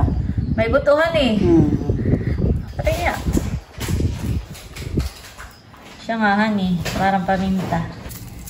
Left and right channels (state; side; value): identical; both; correlation 1.00